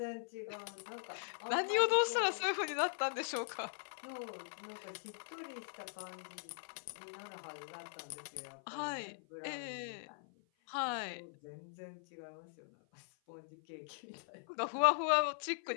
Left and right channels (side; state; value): right; silent; 51 dB below the other